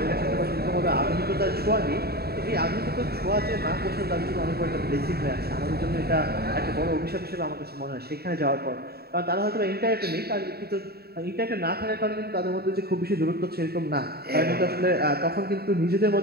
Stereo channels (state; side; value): late; left; 0.46 ms